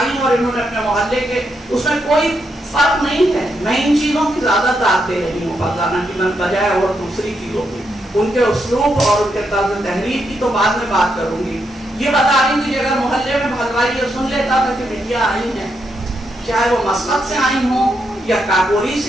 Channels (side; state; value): both; normal; correlation 0.81